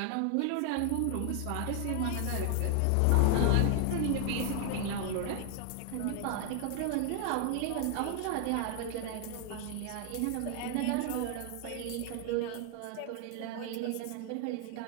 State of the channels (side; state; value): both; different; correlation 0.00